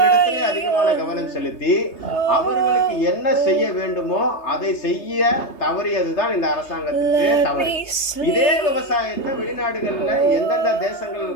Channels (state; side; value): late; right; 3.3 ms